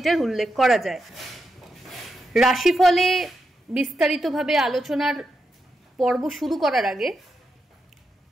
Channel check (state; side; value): normal; both; correlation 0.86